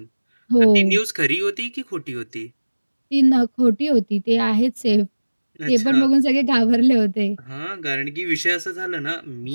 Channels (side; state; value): both; inverted; correlation -1.00